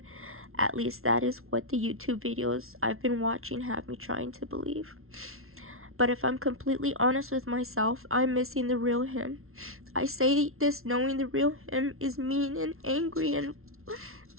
At least that is what the YouTube videos I've been watching have me trying to believe. But if I'm completely honest with myself, I'm missing the real him. I say this knowing the real him is mean and angry and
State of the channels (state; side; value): late; left; 0.62 ms